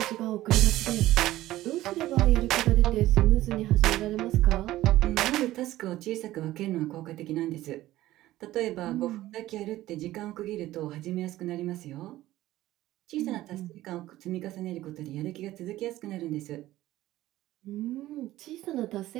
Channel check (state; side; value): quieter; left; 15.5 dB